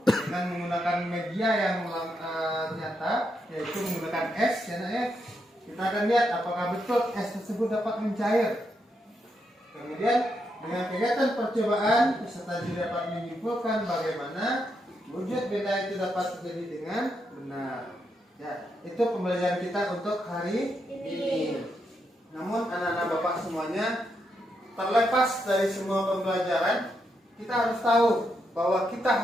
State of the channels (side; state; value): both; normal; correlation 0.81